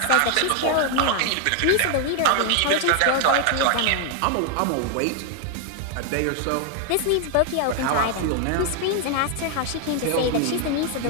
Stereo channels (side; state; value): both; different; correlation 0.00